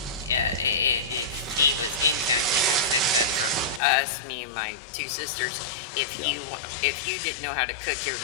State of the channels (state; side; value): drops out; right; at 3.8 s